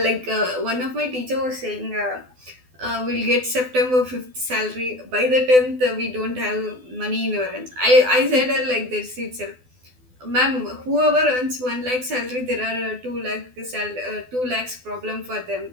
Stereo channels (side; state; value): left; late; 12 ms